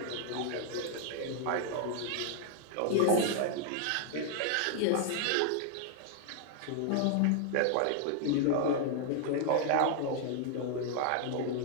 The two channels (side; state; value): both; different; correlation 0.00